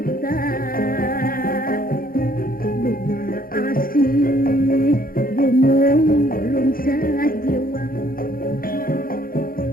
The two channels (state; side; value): late; right; 0.42 ms